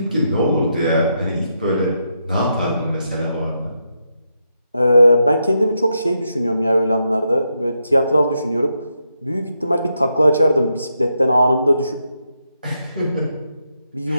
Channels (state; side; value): inverted; both; correlation -0.82